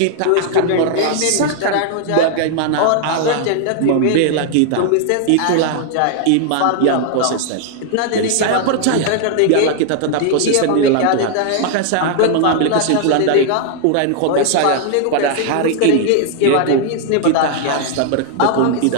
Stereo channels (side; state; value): both; different; correlation 0.00